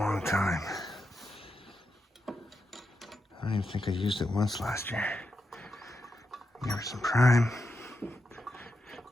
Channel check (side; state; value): both; normal; correlation 0.86